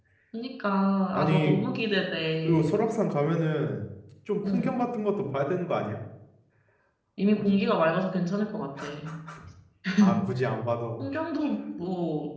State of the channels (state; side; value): identical; both; correlation 1.00